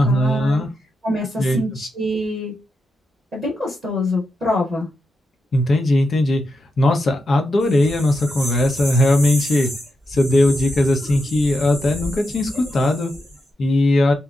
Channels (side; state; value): both; normal; correlation 0.86